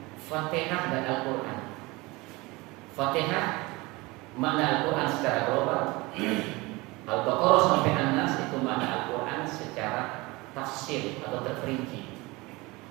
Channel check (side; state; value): left; quieter; 23.2 dB